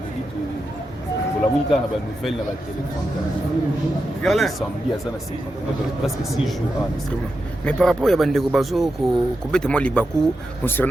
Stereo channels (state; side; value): normal; both; correlation 0.88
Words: pour la musique on a une nouvelle dans la téléphone samedi à ça na 50 presque 6 jours mais par rapport à Bandeko Bazo ko bete mo libaku